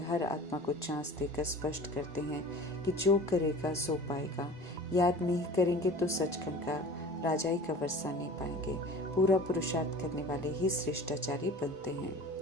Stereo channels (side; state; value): both; normal; correlation 0.40